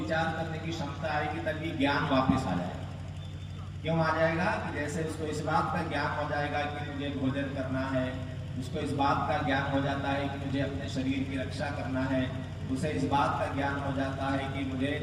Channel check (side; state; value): both; identical; correlation 1.00